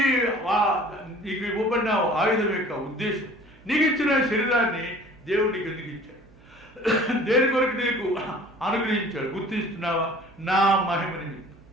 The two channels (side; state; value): right; noise; hum, 27 dB below the sound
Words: నీకు ఇవ్వబడిన ఆయుధం యొక్క ఉద్దేశం. నీకు ఇచ్చిన శరీరాన్ని దేవుడు నీకు ఎందుకు ఇచ్చాడు? దేని కొరకు నీకు అనుగ్రహించాడు? గుర్తిస్తున్నావా? నా మహిమ నిమిత్తం,